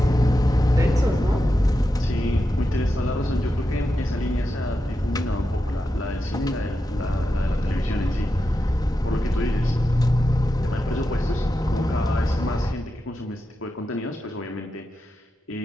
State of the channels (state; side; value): normal; both; correlation 0.89